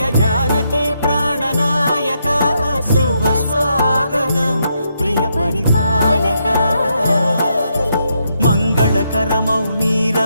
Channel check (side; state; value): both; inverted; correlation -0.79